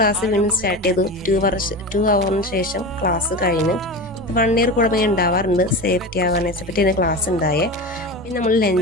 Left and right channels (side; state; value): both; normal; correlation 0.27